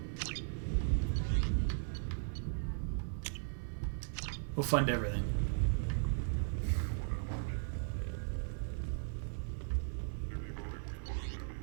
We'll fund everything.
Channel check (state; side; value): silent; left; digital silence